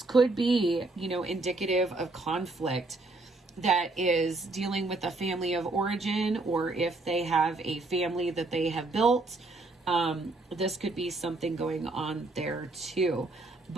could be, you know, indicative of conflict that is dealing with a family of origin, or if they have a family that they have built, this could be something going on there too.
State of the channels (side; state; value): left; quieter; 3.2 dB